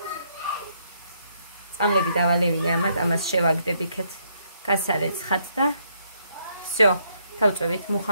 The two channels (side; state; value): both; inverted; correlation -0.73